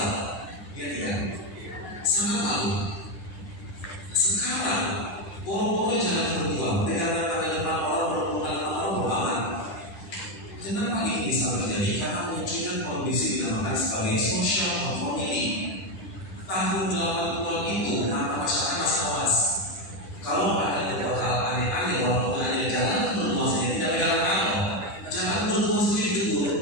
Ya tidak? Sangat malu. Sekarang boro-boro jalan berdua, pegangan pada depan orang, berhubungan dengan orang beraman. Kenapa ini bisa terjadi? Karena munculnya kondisi dinamakan sebagai social conformity. Tahun 80-an itu, kenapa masyarakat masih awas? Kalau ada beberapa hal aneh-aneh, walaupun hanya jalan berdua saja, tidak pegangan tangan, jalan berdua saja ditegur.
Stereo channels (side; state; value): right; late; 10 ms